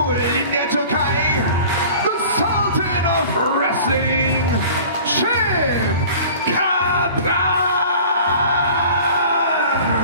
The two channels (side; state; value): both; inverted; correlation -0.43